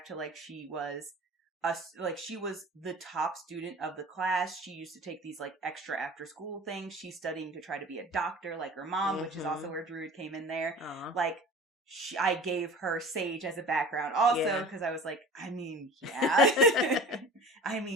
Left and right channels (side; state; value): both; normal; correlation 0.40